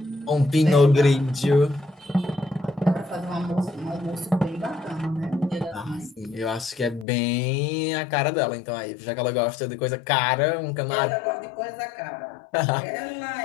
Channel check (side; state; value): right; drops out; at 7.1 s